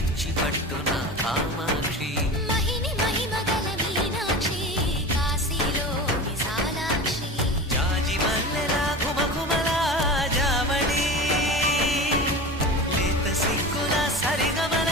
పట్టున కామాక్షి మహిని మహిమగల మీనాక్షి కాశీలో విశాలాక్షి జాజి మల్లెలా గుమగుమలా జావళి లేత సిగ్గుల సరిగమల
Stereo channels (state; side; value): normal; both; correlation 0.31